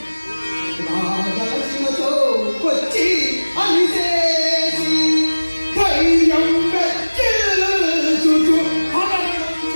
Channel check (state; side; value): inverted; both; correlation -1.00